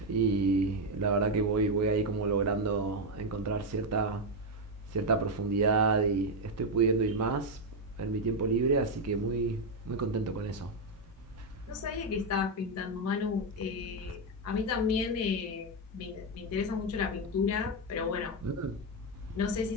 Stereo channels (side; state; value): both; normal; correlation 0.05